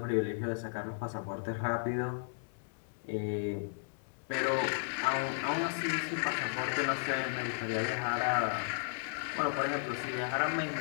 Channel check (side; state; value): right; silent; 55 dB below the other